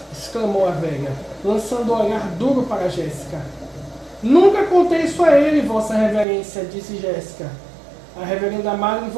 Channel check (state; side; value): drops out; left; at 6.2 s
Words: exclamou a velha, lançando um olhar duro para Jéssica. Nunca contei isso a ele, vossa reverência, disse Jéssica. A reverenda Madre